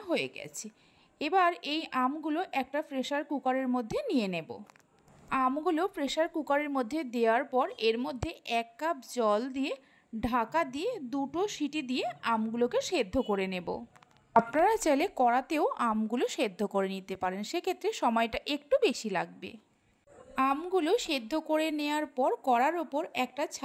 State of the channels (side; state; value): both; identical; correlation 1.00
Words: হয়ে গেছে। এবার এই আমগুলো একটা প্রেসার কুকারের মধ্যে নিয়ে নেব। আমগুলো প্রেসার কুকারের মধ্যে দেওয়ার পর এর মধ্যে 1 কাপ জল দিয়ে ঢাকা দিয়ে 2টো সিটি দিয়ে আমগুলোকে সেদ্ধ করে নেব। আপনারা চাইলে কড়াতেও আমগুলো সেদ্ধ করে নিতে পারেন, সেক্ষেত্রে সময়টা একটু বেশি লাগবে। আমগুলো সেদ্ধ করে নেওয়ার পর কড়ার ওপর একটা